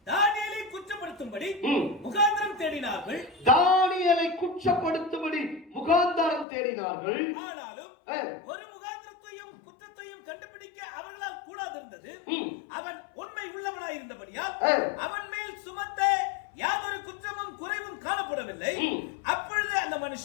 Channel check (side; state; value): right; drops out; at 6.5 s